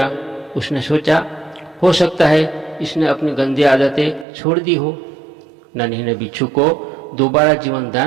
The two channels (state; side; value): drops out; left; at 4.2 s